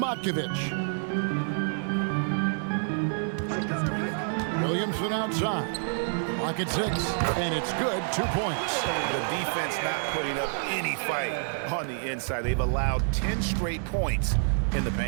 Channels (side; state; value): left; silent; 59 dB below the other